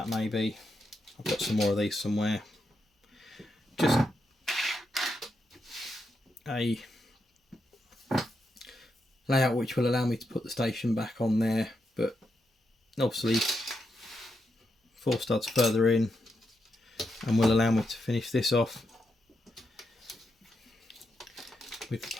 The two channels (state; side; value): normal; both; correlation 0.84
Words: maybe. I've got some more of these somewhere. Just a layout which will allow me to put the station back on there, but obviously 4 studs further in, and will allow me to finish this off with the